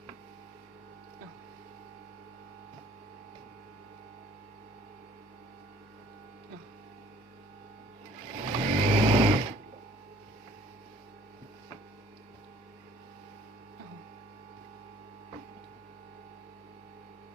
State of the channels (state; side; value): normal; both; correlation 0.56